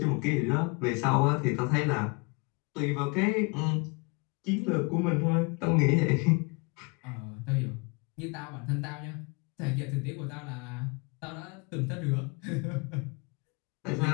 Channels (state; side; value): quieter; right; 30.6 dB